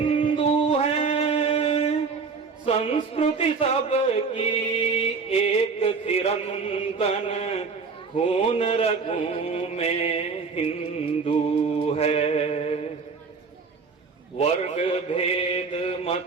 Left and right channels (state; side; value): quieter; left; 4.9 dB